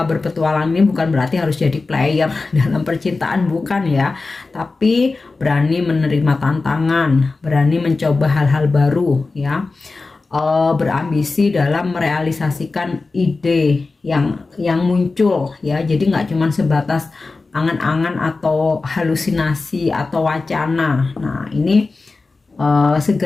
berpetualang ini bukan berarti harus jadi player dalam percintaan, bukan ya. Tapi berani menerima tantangan, berani mencoba hal-hal baru ya. Berambisi dalam merealisasikan ide yang muncul ya, jadi nggak cuma sebatas angan-angan atau halusinasi atau wacana. Nah ini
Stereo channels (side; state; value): right; quieter; 3.8 dB